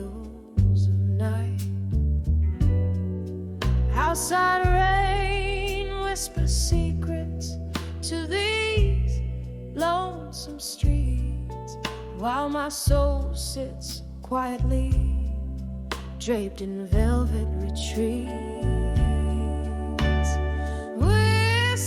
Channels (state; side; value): identical; both; correlation 1.00